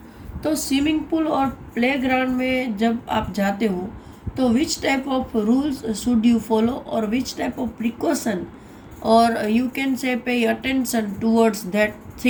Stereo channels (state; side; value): identical; both; correlation 1.00